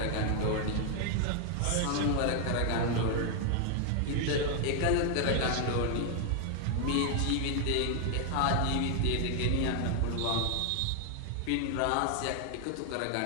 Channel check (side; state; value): both; different; correlation 0.00